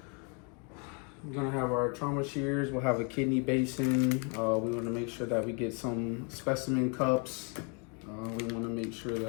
We're gonna have our trauma shears. We'll have a kidney basin. We want to make sure that we get some specimen cups. We want to make sure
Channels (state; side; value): quieter; right; 35.9 dB